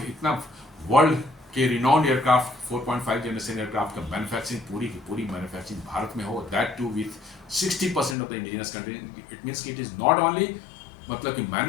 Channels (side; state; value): right; drops out; at 8.2 s